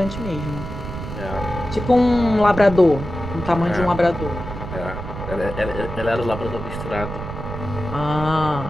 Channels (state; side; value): noise; right; rumble, 8 dB below the sound